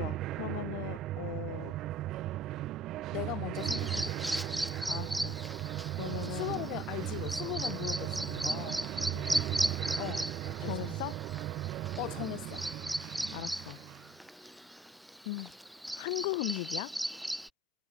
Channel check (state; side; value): normal; both; correlation 0.52